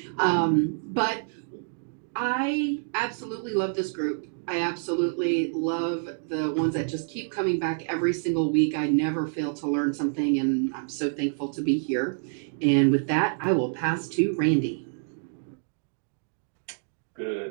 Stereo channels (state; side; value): silent; left; digital silence